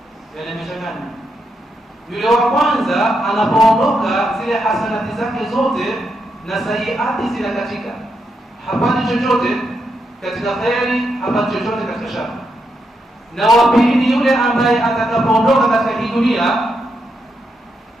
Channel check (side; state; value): both; normal; correlation 0.82